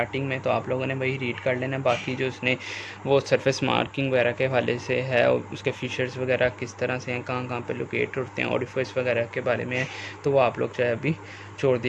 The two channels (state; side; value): identical; both; correlation 1.00